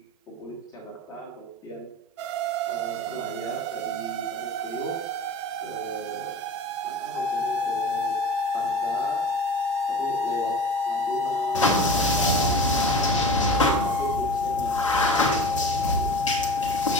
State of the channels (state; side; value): normal; both; correlation 0.35